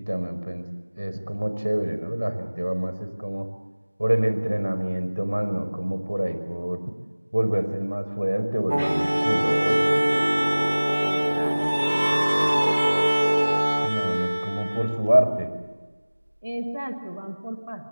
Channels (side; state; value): both; inverted; correlation -1.00